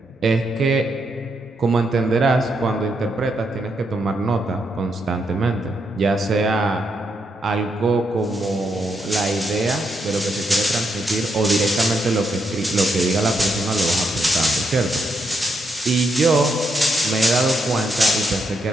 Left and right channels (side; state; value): both; normal; correlation 0.80